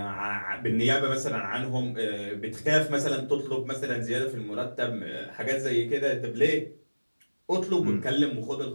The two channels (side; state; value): both; inverted; correlation -1.00